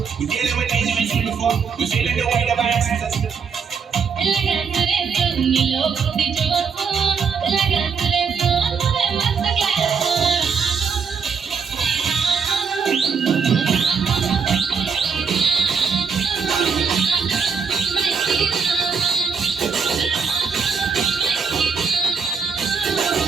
We dealing with dangerous before. We feeling the weight of our ancestors.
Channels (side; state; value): left; quieter; 5.8 dB